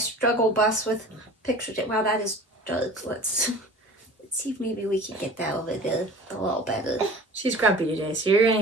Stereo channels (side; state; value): both; normal; correlation 0.41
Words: bus with pictures. Wow, that is dark. Let's see if maybe we can get that over there a little better. She's grumpy today, so you're gonna